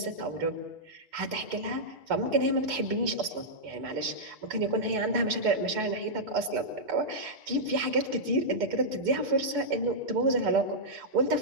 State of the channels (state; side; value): late; left; 6.8 ms